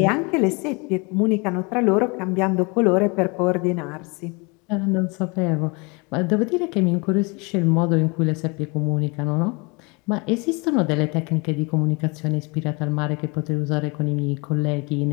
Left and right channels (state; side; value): quieter; right; 29.4 dB